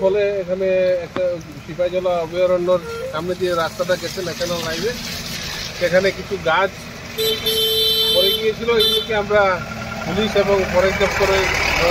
ফলে এখানে একটা সিপাহীজলা অভয়ারণ্যর সামনে দিয়ে রাস্তাটা গেছে ন্যাশনাল হাইওয়ে সেখানে কিছু গাছ পড়ে গিয়েছিল এগুলোকে আমরা পুলিশ এবং ফরেস্ট দপ্তরের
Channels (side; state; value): both; identical; correlation 1.00